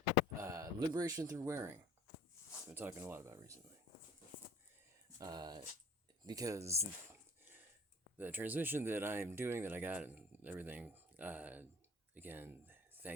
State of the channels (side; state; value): both; normal; correlation 0.46